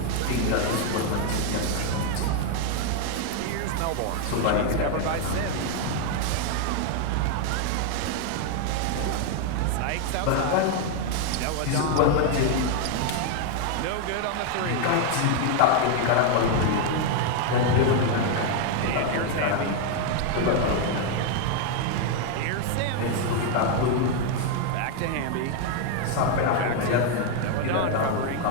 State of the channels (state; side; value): different; both; correlation 0.01